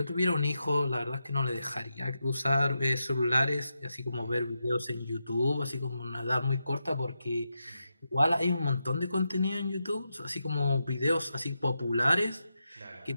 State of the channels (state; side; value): inverted; both; correlation -0.87